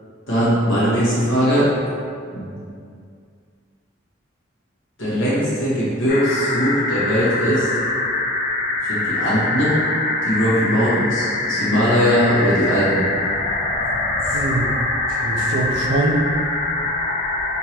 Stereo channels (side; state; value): both; normal; correlation 0.39